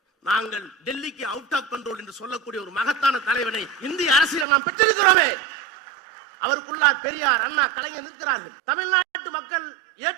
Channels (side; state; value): left; drops out; at 4.5 s